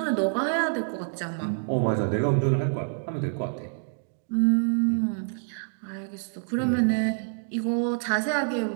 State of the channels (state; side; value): silent; left; digital silence